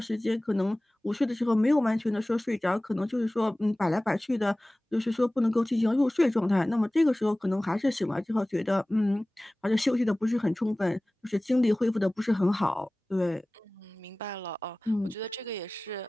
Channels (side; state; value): both; normal; correlation 0.98